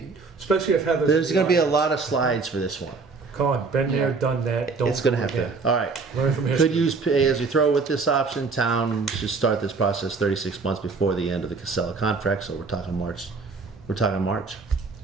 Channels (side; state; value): left; quieter; 4.4 dB